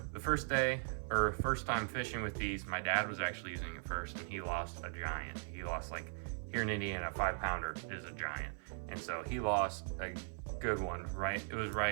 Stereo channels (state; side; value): silent; left; 52 dB below the other